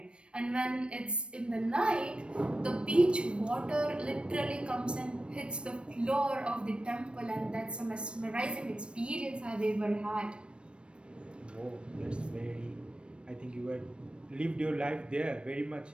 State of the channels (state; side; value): late; left; 0.058 ms